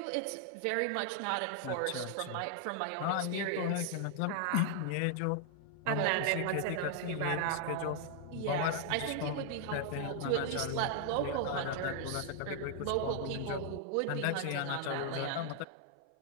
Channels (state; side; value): different; both; correlation 0.00